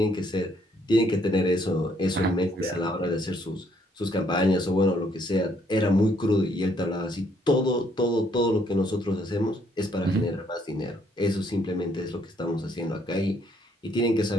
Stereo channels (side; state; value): both; normal; correlation 0.68